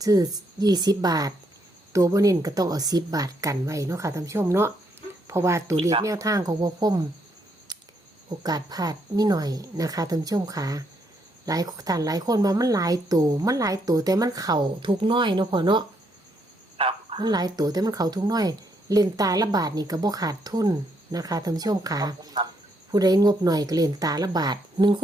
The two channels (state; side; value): normal; both; correlation 0.74